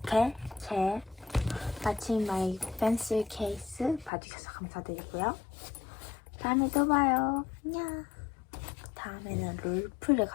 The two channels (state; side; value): drops out; right; at 4.1 s